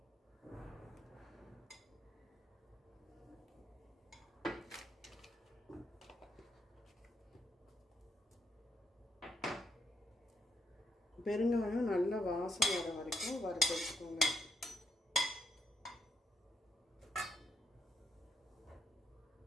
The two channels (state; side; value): normal; both; correlation 0.78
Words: பெருங்காயம் நல்ல வாசம் வர வரைக்கும் வறுத்து வச்சுக்கோங்க.